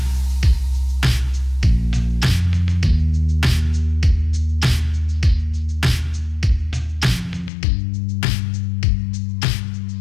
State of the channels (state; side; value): drops out; right; at 7.5 s